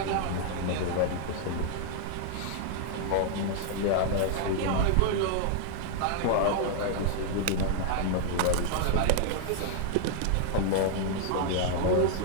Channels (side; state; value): both; different; correlation 0.00